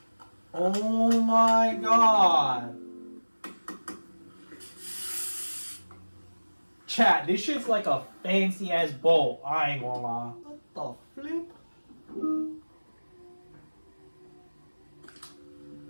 Oh my god. Chat, this shit's like a fancy ass bolt. I ain't gonna lie. What the flip?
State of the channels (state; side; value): inverted; both; correlation -1.00